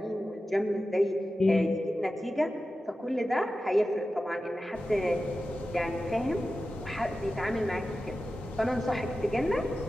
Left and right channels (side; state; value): both; normal; correlation 0.93